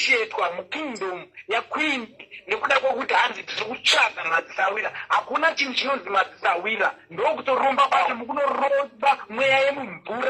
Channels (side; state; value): both; identical; correlation 1.00